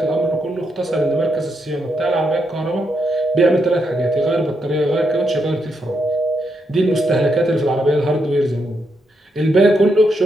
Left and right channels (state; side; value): normal; both; correlation 0.80